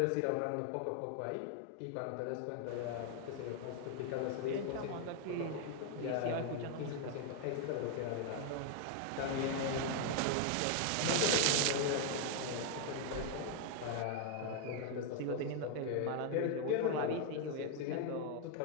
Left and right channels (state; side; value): different; both; correlation 0.00